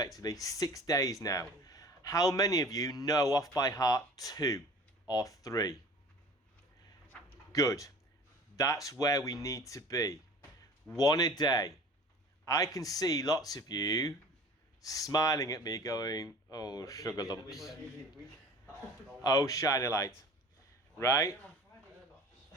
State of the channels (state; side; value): normal; both; correlation 0.43